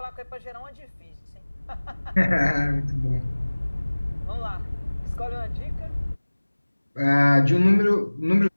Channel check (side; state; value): both; inverted; correlation -1.00